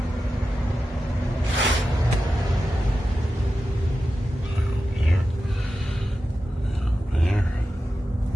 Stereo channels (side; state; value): both; normal; correlation 0.92